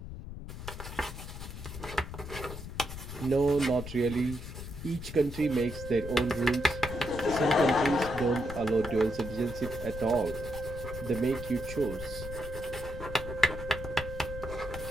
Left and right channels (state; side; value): noise; left; rumble, 9 dB below the sound